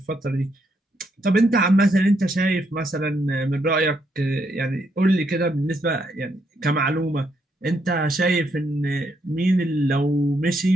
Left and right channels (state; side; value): normal; both; correlation 0.76